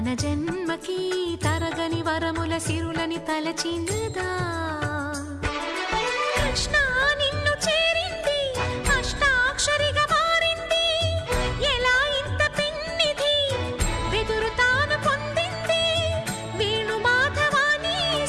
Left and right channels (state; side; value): identical; both; correlation 1.00